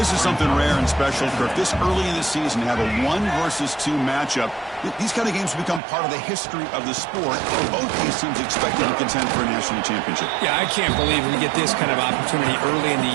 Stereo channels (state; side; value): drops out; left; at 5.8 s